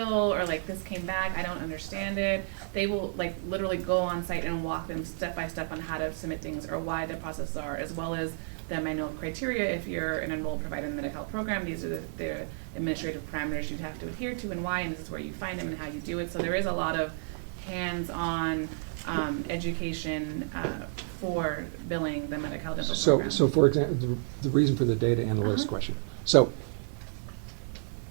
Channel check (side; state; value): left; silent; digital silence